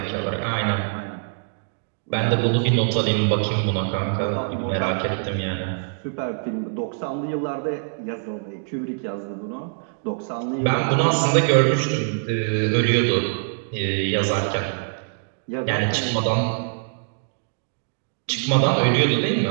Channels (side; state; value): left; silent; digital silence